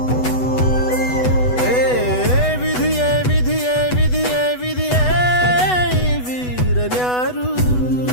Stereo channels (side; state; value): right; late; 8.1 ms